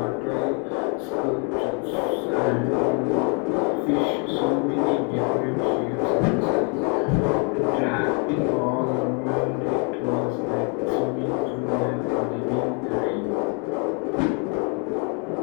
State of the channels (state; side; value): quieter; right; 37.5 dB